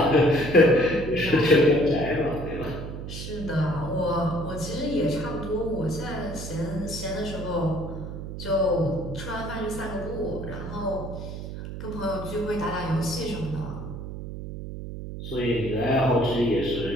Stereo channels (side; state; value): right; noise; hum, 8 dB below the sound